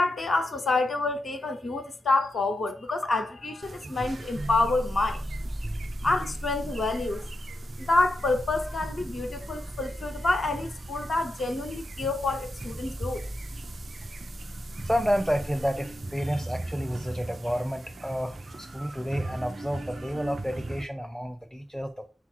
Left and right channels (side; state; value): both; normal; correlation 0.88